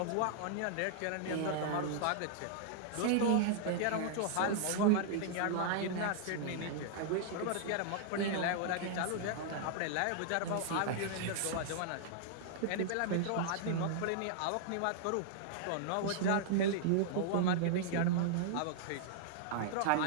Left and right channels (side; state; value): both; different; correlation -0.01